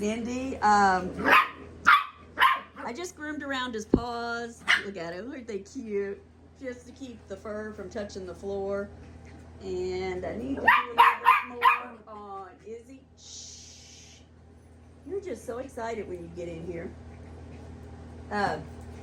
Indy. I just groomed around his paws. Look at him, aren't they cute? Just to keep the fur from touching the floor. And I need to do a little bit more on Izzy. Shh. You're just so excited when you get in here. You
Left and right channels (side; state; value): both; identical; correlation 1.00